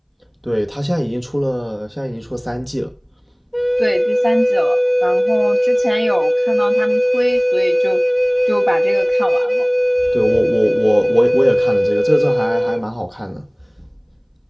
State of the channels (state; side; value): identical; both; correlation 1.00